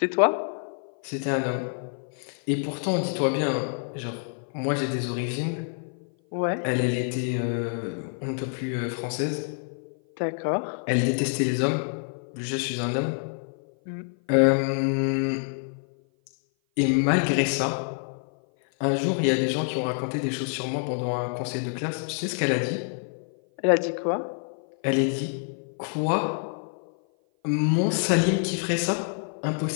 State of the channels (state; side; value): silent; right; 56 dB below the other